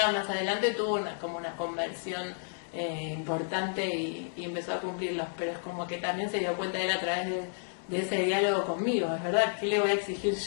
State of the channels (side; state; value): right; silent; digital silence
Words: más adelante tuvo como una conversión importante y empezó a cumplirlos. Pero es como que también se dio cuenta de él a través de ese diálogo conmigo. Es verdad, ¿qué le voy a exigir